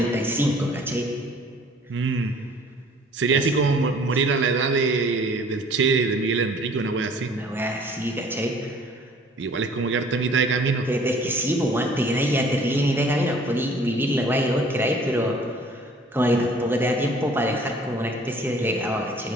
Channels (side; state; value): both; normal; correlation 0.53